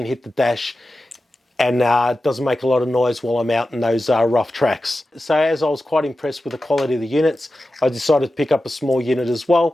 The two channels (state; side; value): normal; both; correlation 0.93